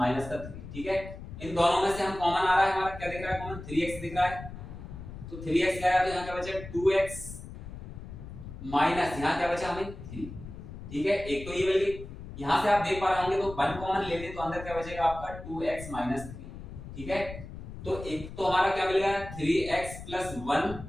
का 3। ठीक है, इन दोनों में से हम कॉमन आ रहा है, हमारा क्या दिख रहा है कॉमन, 3x दिख रहा है। तो 3x क्या है, तो यहाँ क्या बचा 2x माइनस यहाँ क्या बचा हमें 3। ठीक है, एक तो ये मिल गई। यहाँ से आप देख पा रहे होंगे तो 1 कॉमन ले लें तो अंदर क्या बचेगा आपका 2x माइनस 3। ठीक है, तो एक तो हमारा क्या मिल गया 3x प्लस 1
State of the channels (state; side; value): noise; left; rumble, 12 dB below the sound